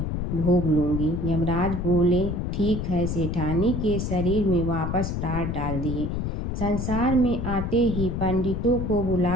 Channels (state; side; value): noise; left; rumble, 2 dB below the sound